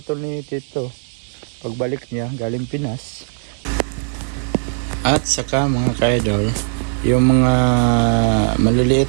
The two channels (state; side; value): silent; left; digital silence